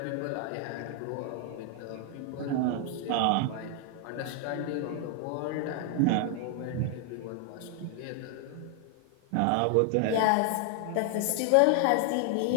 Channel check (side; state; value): both; different; correlation 0.00